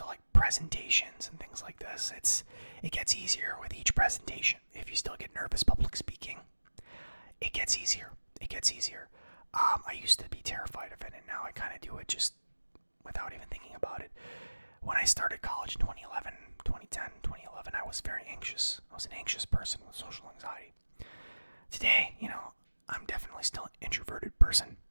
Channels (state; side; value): inverted; both; correlation -1.00